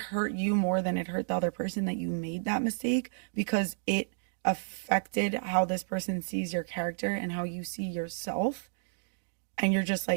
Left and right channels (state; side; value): silent; left; digital silence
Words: you more than it hurt the other person that you made that mistake because it affected how this person sees your character and how you see yourself, and you're just